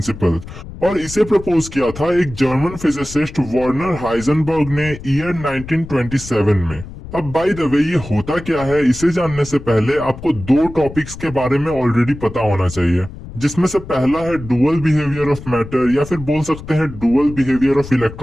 और इसे प्रपोज किया था एक जर्मन फिजिसिस्ट वर्नर हाइजेनबर्ग ने ईयर 1927 में। अब बाय द वे ये होता क्या है इसे जानने से पहले आपको दो टॉपिक्स के बारे में ऑलरेडी पता होना चाहिए, जिसमें से पहला है डुअल बिहेवियर ऑफ मैटर या फिर बोल सकते हैं dual behaviour of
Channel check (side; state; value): left; noise; rumble, 13 dB below the sound